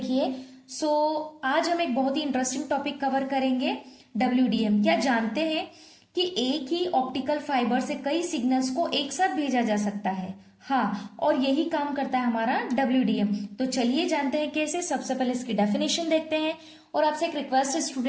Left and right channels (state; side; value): identical; both; correlation 1.00